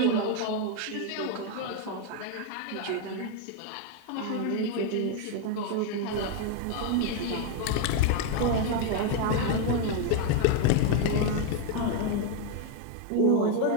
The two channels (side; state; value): both; different; correlation 0.01